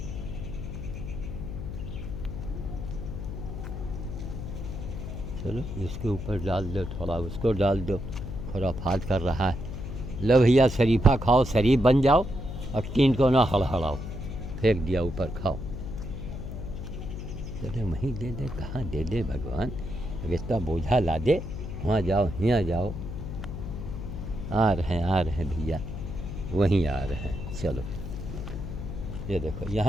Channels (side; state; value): left; noise; hum, 7 dB below the sound